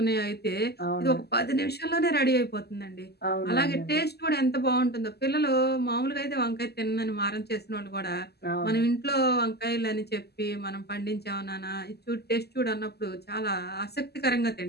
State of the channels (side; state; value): right; late; 0.47 ms